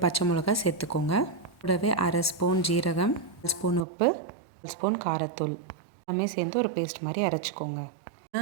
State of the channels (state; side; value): drops out; left; at 3.9 s